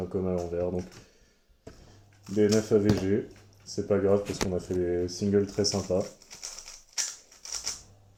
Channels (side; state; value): both; identical; correlation 1.00